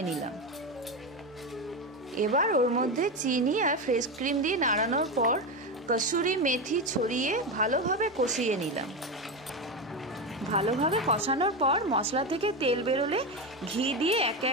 নিলাম। এবার ওর মধ্যে চিনি আর ফ্রেশ ক্রিম দিয়ে নাড়ানোর পর কসুরি মেথি ছড়িয়ে ভালোভাবে কষিয়ে নিলাম। ভালোভাবে কষানোর পর মশলা থেকে তেল বেরোলে ঘি দিয়ে একে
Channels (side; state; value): both; normal; correlation 0.15